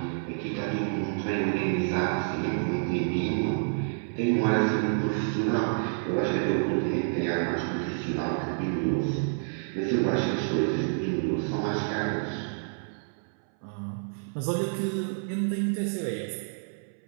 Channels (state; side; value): silent; left; 59 dB below the other